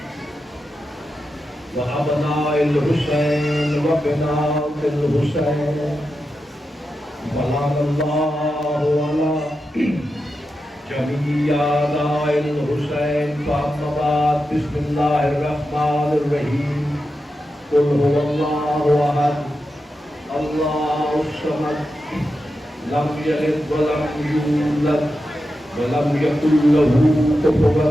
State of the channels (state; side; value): normal; both; correlation 0.89